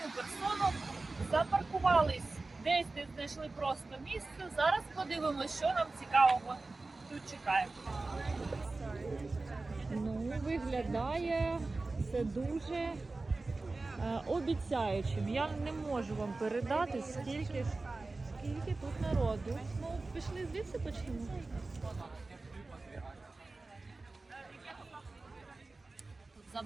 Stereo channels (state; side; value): quieter; left; 3.4 dB